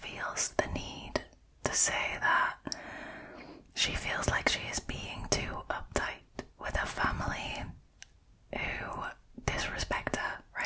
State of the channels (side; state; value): both; identical; correlation 1.00